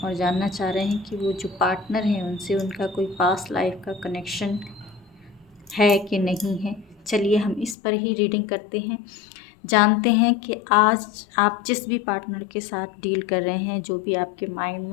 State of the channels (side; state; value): right; drops out; at 7.8 s